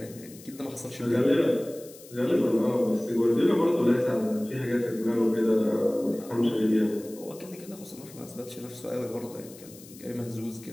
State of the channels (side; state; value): left; noise; hiss, 20 dB below the sound